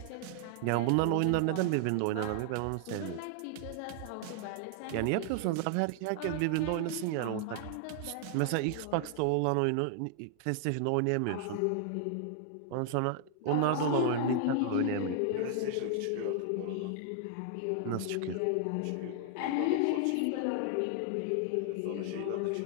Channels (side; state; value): both; different; correlation 0.00